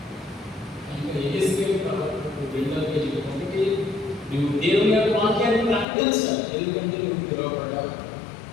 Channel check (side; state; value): right; drops out; at 5.9 s